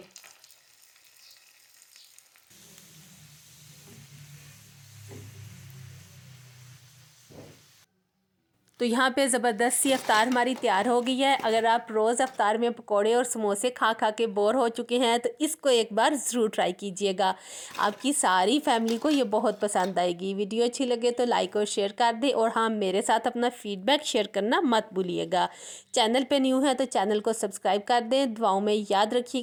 तो यहाँ पे ज़बरदस्त सी अफ्तार हमारी तैयार हो गई है। अगर आप रोज़ अफ्तार में पकोड़े और समोसे खा खा के बोर हो चुके हैं तो इसको एक बार ज़रूर ट्राई कीजिएगा। आपकी सारी फैमिली को ये बहुत पसंद आएगी। वीडियो अच्छी लगे तो लाइक और शेयर कर दें और हाँ, मेरे साथ अपना फीडबैक शेयर करना मत भूलिएगा। चैनल पे न्यू है तो चैनल को सब्सक्राइब कर दें। दुआओं में याद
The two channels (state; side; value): identical; both; correlation 1.00